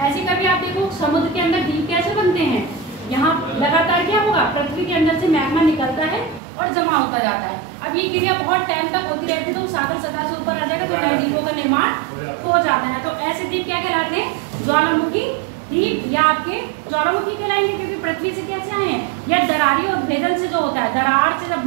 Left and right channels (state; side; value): drops out; left; at 6.4 s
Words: ऐसे कभी आप देखो समुद्र के अंदर द्वीप कैसे बनते हैं, यहाँ लगातार क्या होगा, पृथ्वी के अंदर से मैग्मा निकलता है और जमा होता जाता है। अब ये क्रिया बहुत टाइम तक होती रहती है, तो सागर सतह से ऊपर आ जाएगा तो नए द्वीपों का निर्माण हो जाता है। तो ऐसे द्वीप क्या कहलाते हैं, ज्वालामुखी द्वीप, या आपके ज्वालामुखी कहलाएंगे क्योंकि पृथ्वी से कैसे आए हैं, या दरारी और भेदन से जो होता है, दरार से जब